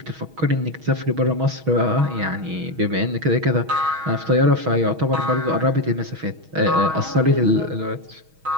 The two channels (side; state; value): left; late; 6.3 ms